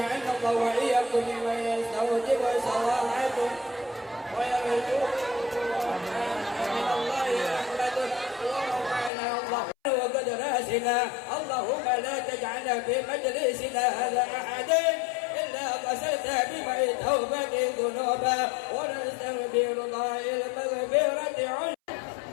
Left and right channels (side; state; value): right; drops out; at 9.1 s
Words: الله وإياكم ممن يستوجب صلاحكم ويرجو من الله رحمته ورفعنا الله وقد راسنا. اللهم لا تجعلنا في مجلسنا هذا أحد إلا غسلت بماء توبة ذنوبا ونستغفر الله المغفرة عنه.